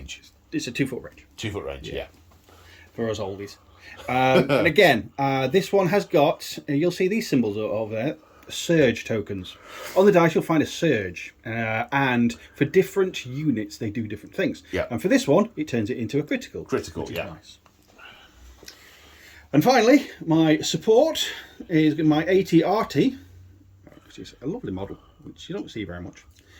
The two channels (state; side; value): identical; both; correlation 1.00